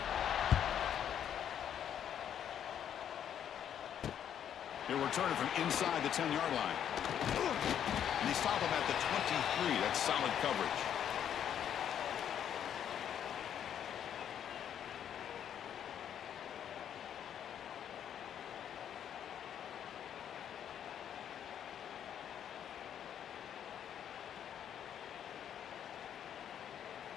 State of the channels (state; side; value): quieter; right; 9.4 dB